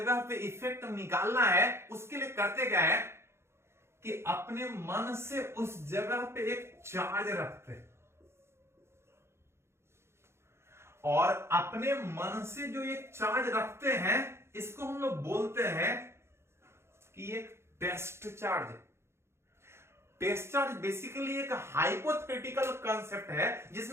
पे इफेक्ट निकालना है, उसके लिए करते क्या है कि अपने मन से उस जगह पे एक चार्ज रखते हैं, और अपने मन से जो एक चार्ज रखते हैं इसको हम लोग बोलते हैं कि एक test charge. Test charge basically एक हाइपोथेटिकल कंसेप्ट है,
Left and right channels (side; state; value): left; late; 0.12 ms